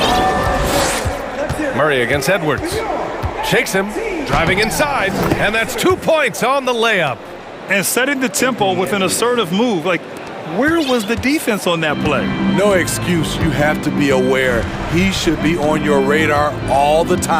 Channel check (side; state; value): both; identical; correlation 1.00